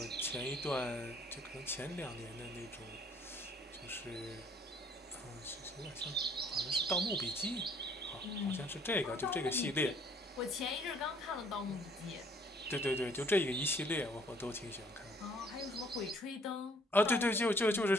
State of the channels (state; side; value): normal; both; correlation 0.61